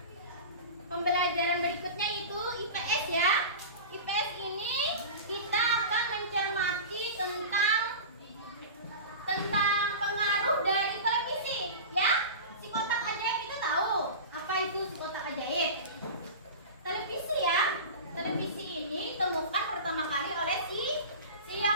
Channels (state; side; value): inverted; both; correlation -0.31